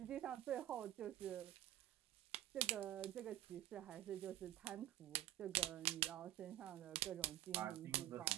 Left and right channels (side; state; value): left; quieter; 13.6 dB